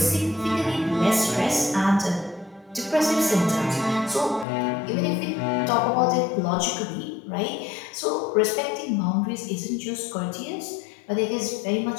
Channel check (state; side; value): drops out; right; at 4.5 s